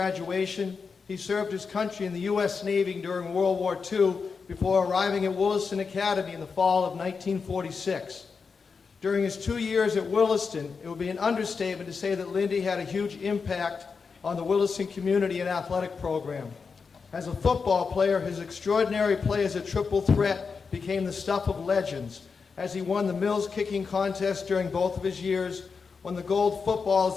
he served his country in the U.S. Navy during World War II before arriving at Williston Academy in the fall of 1946. During his 2 years at Williston, it would be an understatement to say that Lindy had a huge impact on the Williston community and athletic program. As a football player, his extraordinary play as a triple threat became the stuff of legends, as he won the Mills kicking contest during both of his years, won the gold football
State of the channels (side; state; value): right; quieter; 5.2 dB